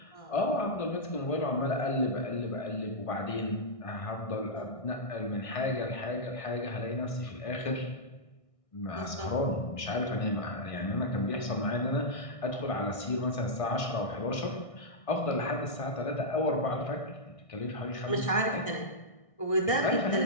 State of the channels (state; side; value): late; right; 1.6 ms